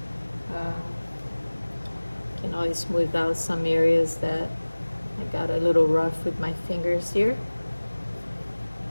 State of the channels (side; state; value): both; inverted; correlation -1.00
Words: Can always smooth out some areas that I got a little rough with my fingers here.